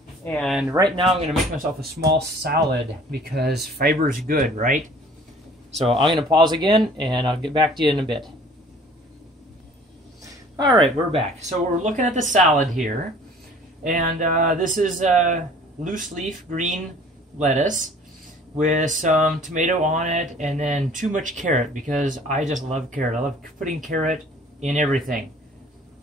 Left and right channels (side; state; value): both; normal; correlation 0.50